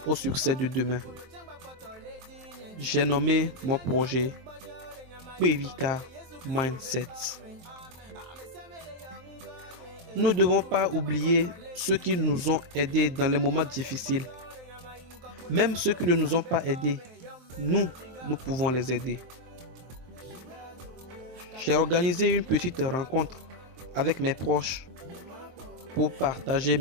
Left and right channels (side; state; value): left; late; 23 ms